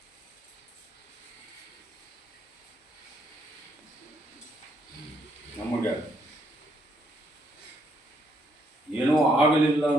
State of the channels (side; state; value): both; normal; correlation 0.72